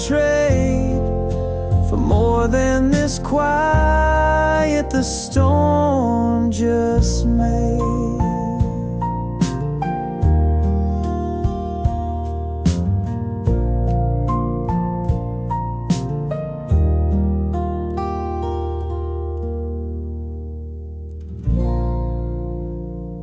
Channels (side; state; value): both; identical; correlation 1.00